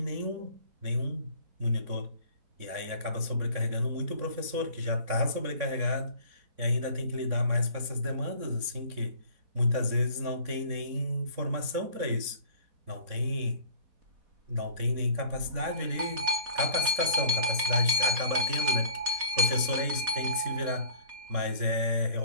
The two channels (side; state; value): left; late; 3.7 ms